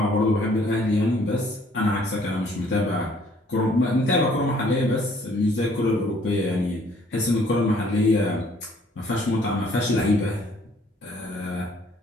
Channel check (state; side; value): normal; both; correlation 0.61